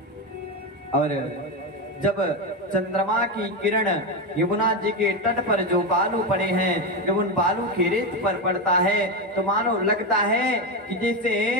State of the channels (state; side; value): normal; both; correlation 0.13